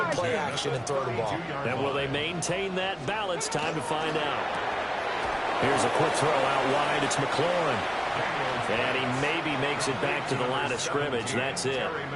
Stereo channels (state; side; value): identical; both; correlation 1.00